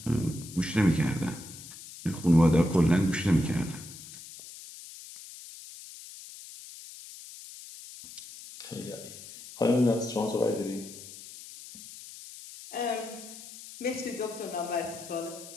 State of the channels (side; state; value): left; noise; hiss, 15 dB below the sound